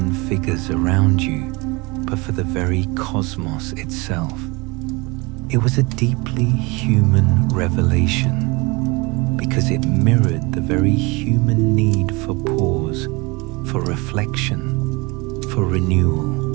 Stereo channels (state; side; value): quieter; left; 26.0 dB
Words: figures around you, but for the very cosmos itself. It was a deeply human revelation because it mirrored the very human need for pause, for reflection, for